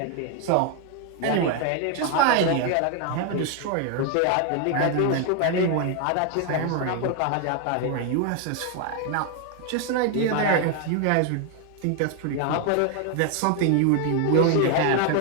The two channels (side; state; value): both; different; correlation 0.01